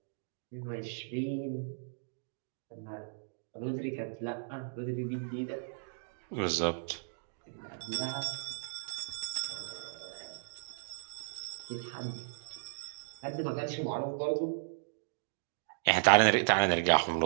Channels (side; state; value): left; silent; digital silence